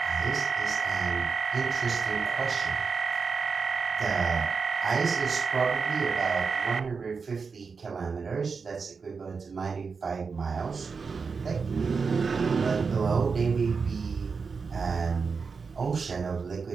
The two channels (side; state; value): left; quieter; 5.1 dB